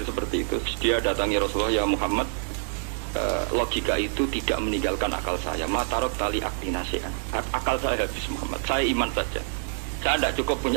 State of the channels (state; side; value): silent; left; digital silence